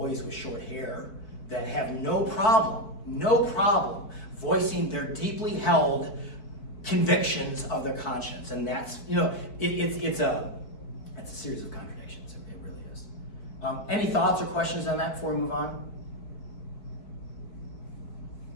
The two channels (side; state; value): right; late; 4.5 ms